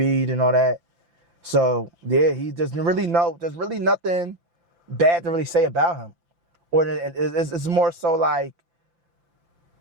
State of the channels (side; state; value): left; late; 5.8 ms